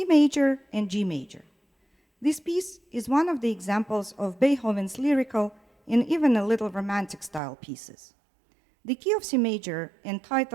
major and G major. This piece is one of the examples of Beethoven's lyrical and even a little romantic style pieces. The key of C major,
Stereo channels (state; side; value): drops out; left; at 7.4 s